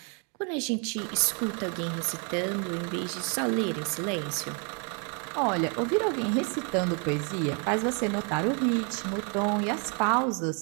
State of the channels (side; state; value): left; quieter; 36.9 dB